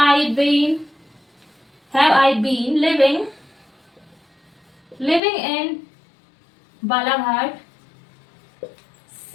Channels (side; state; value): right; drops out; at 5.2 s